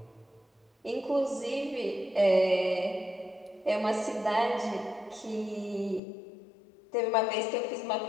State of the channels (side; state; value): right; drops out; at 6.0 s